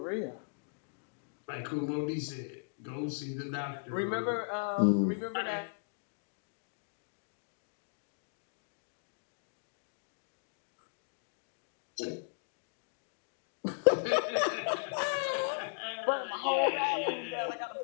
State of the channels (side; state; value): right; silent; digital silence